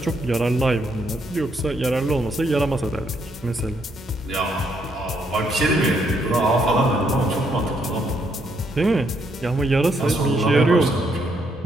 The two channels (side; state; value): both; normal; correlation 0.74